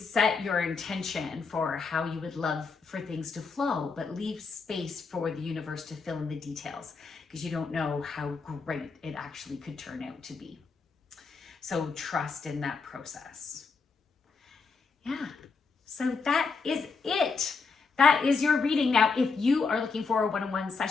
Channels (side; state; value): right; quieter; 4.8 dB